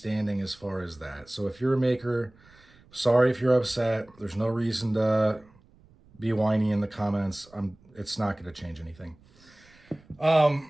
as far as that. So if you're a maker, sorry if you're upset. There's no reason to be whiny in the comments. It's not going to change anything.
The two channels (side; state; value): right; noise; rumble, 28 dB below the sound